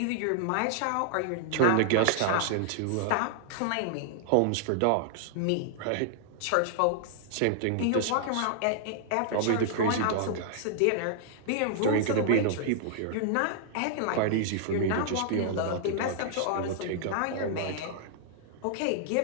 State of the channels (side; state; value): both; different; correlation -0.01